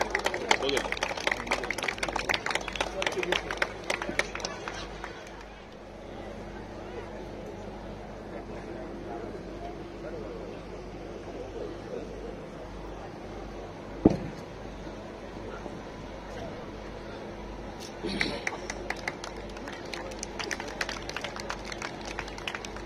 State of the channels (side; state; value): both; identical; correlation 1.00